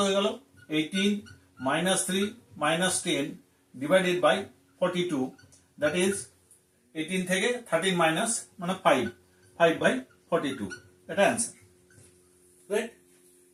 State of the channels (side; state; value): both; identical; correlation 1.00